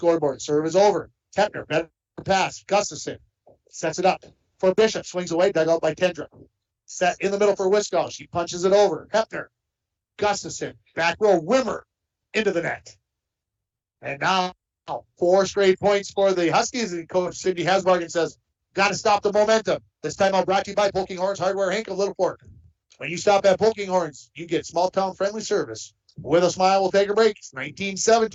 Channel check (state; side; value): identical; both; correlation 1.00